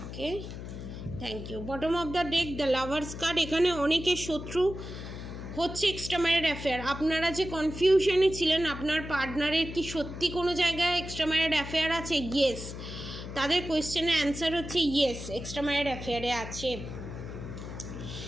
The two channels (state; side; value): noise; left; hum, 9 dB below the sound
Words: thank you. Bottom of the deck the lovers card. এখানে অনেকের শত্রু হচ্ছে এক্সট্রা ম্যারিড অ্যাফেয়ার। আপনারা যে কনফিউশনে ছিলেন আপনার পার্টনারের কি সত্যি কোনো জায়গায় এক্সট্রা ম্যারিড অ্যাফেয়ার আছে, ইয়েস। তাদের কোয়েশ্চেনের অ্যান্সার হচ্ছে ইয়েস, এক্সট্রা ম্যারিড অ্যাফেয়ারে আছে।